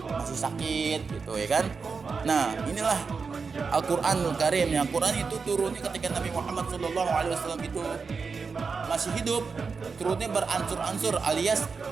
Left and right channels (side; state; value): left; quieter; 5.0 dB